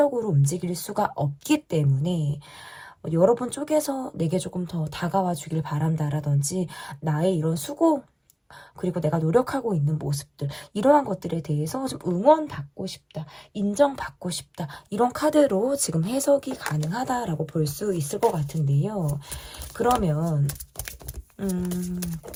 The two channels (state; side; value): identical; both; correlation 1.00